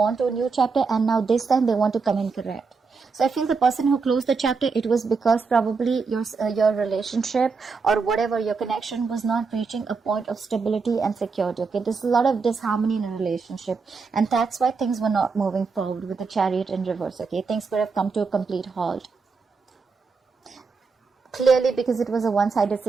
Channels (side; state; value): left; quieter; 4.8 dB